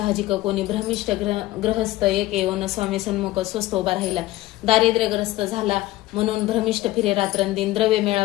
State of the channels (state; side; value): quieter; right; 17.1 dB